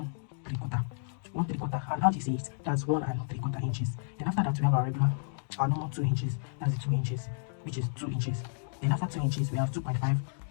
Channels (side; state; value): right; silent; digital silence